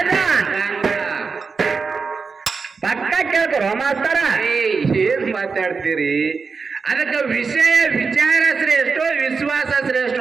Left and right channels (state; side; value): quieter; left; 4.9 dB